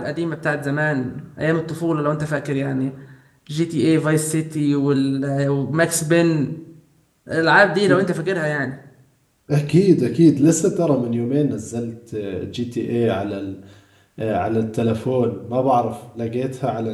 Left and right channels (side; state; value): both; identical; correlation 1.00